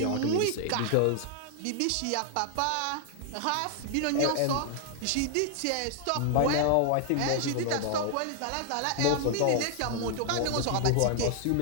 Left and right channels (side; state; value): both; different; correlation 0.00